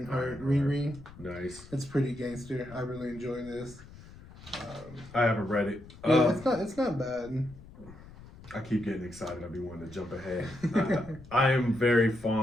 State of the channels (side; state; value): left; noise; rumble, 19 dB below the sound